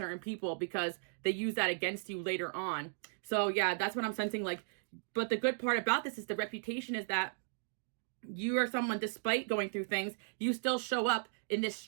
people because they use that against you later on. So yeah, that's what I'm sensing. Like, but the good part about this is the reputation is that you are someone, despite going through things, you still show up in this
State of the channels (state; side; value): silent; left; digital silence